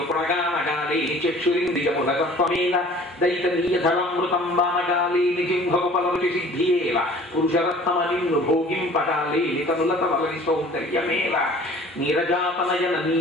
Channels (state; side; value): normal; both; correlation 0.49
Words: పురగానగాలి చక్షురింద్రియముల తత్వమేల, దైతనీయధరమృతం బానగాలి జింహోపలరుచి సిద్ధియేల, పురుషరత్నమ నిన్ను భోగింపగాలి కనులత వలని సౌందర్యమేల, నీరజాతనయన